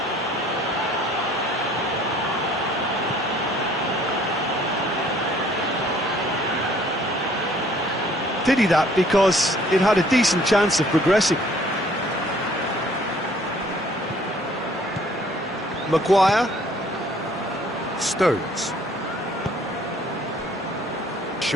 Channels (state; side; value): normal; both; correlation 0.58